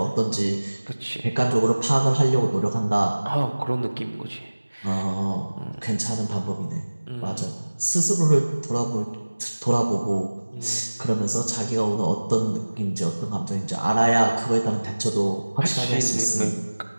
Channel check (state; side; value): inverted; both; correlation -1.00